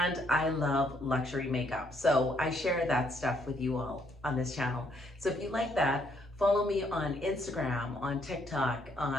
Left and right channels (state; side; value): normal; both; correlation 0.70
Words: I love luxury makeup. So I share that stuff with you all on this channel. So if you like that, follow me on Instagram, on TikTok,